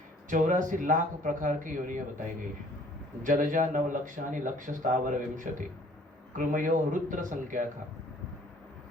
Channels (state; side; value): normal; both; correlation 0.56